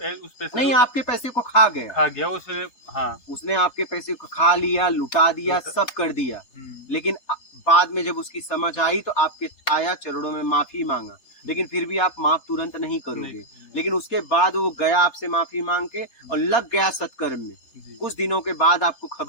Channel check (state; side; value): late; right; 3.3 ms